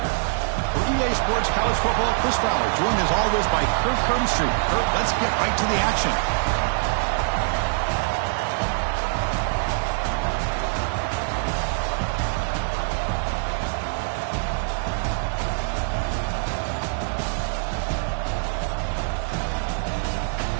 For EA Sports College Football, Chris Fowler, joined as always by Kirk Hermstreet. Kirk, let's get right to the action.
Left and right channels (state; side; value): silent; left; digital silence